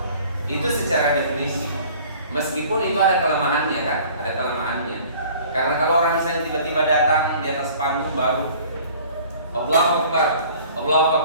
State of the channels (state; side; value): inverted; both; correlation -0.50